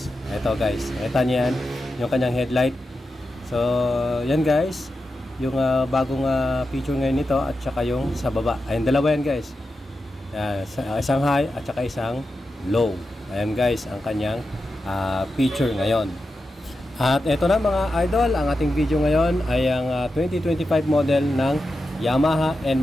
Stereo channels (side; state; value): both; normal; correlation 0.90